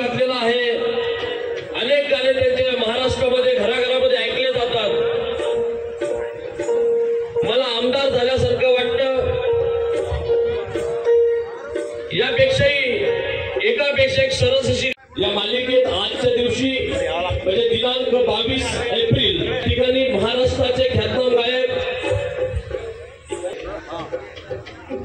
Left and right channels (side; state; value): both; identical; correlation 1.00